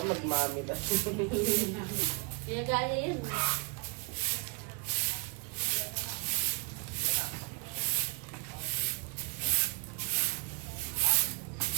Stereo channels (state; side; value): quieter; left; 32.6 dB